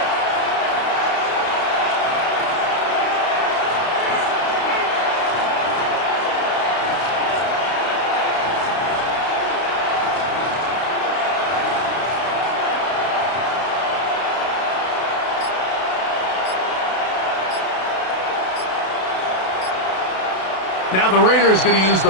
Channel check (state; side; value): late; right; 32 ms